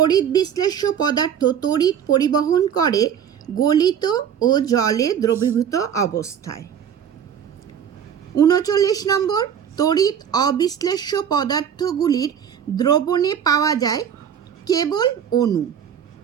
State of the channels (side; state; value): left; quieter; 8.5 dB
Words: বিশ্লেষ্য পদার্থ তড়িৎ পরিবহন করে গলিত ও জলে দ্রবীভূত অবস্থায়। 39 নম্বর, তড়িৎ অবিশ্লেষ্য পদার্থগুলির দ্রবণে পাওয়া যায় কেবল অণু,